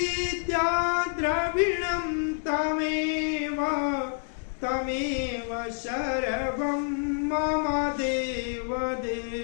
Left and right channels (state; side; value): silent; right; 59 dB below the other